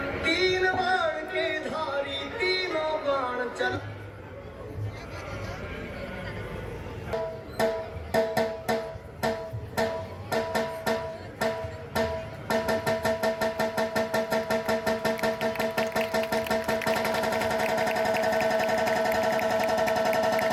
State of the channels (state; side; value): identical; both; correlation 1.00